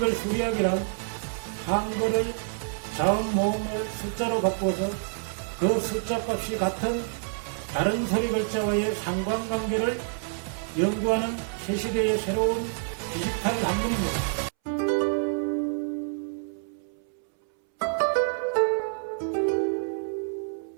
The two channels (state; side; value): silent; left; 60 dB below the other